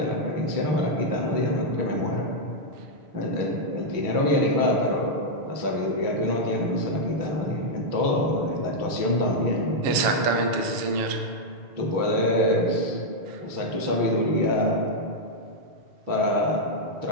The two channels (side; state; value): left; late; 6.6 ms